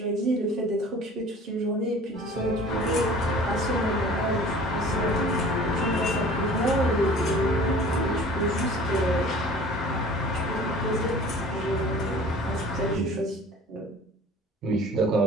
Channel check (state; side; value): normal; both; correlation 0.45